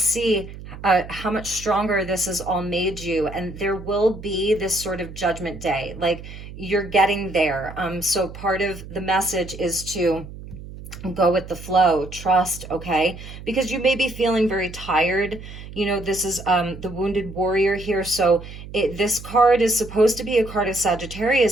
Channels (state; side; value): noise; right; hum, 13 dB below the sound